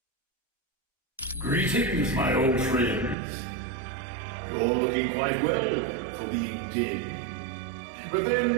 Greetings, my old friends. You're looking quite well for being dead. But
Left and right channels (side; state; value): left; drops out; at 3.2 s